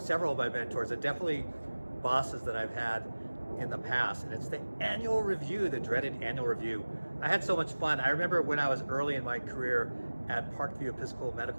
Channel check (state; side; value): inverted; both; correlation -1.00